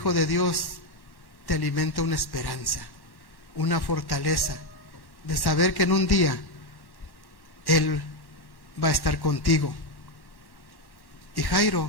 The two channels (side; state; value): right; late; 1.1 ms